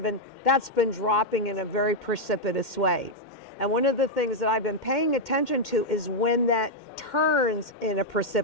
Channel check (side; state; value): right; late; 2.1 ms